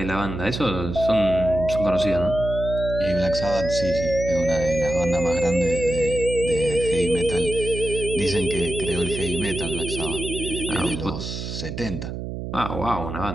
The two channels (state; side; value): noise; right; hum, 6 dB below the sound